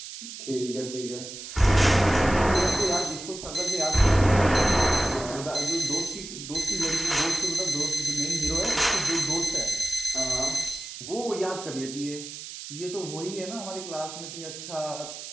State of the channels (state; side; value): noise; right; hiss, 11 dB below the sound